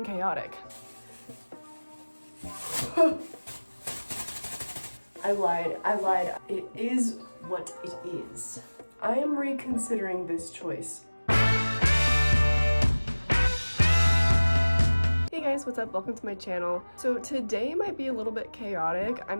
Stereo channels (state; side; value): inverted; both; correlation -1.00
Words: chaotic. I lied. It is what it is. I am reconsidering this choice. Hey guys, what's up? Welcome to my channel. So today might be a little bit chaotic. I'm